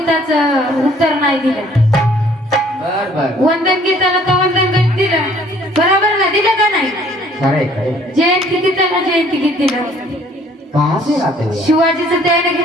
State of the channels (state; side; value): normal; both; correlation 0.58